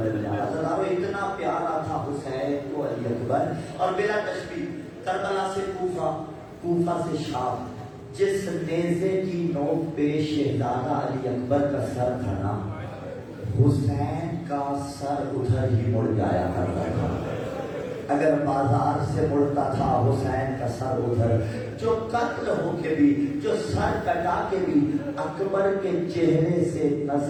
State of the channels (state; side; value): identical; both; correlation 1.00